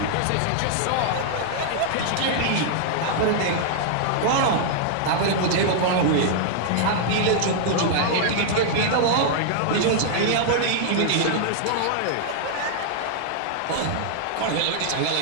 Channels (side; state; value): both; different; correlation -0.01